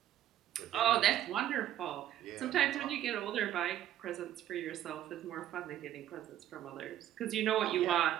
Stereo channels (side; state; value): left; quieter; 12.0 dB